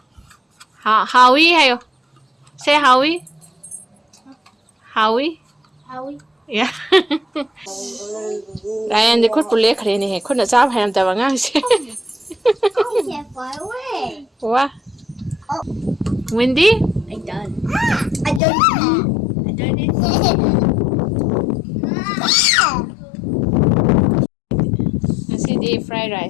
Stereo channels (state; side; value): drops out; right; at 18.4 s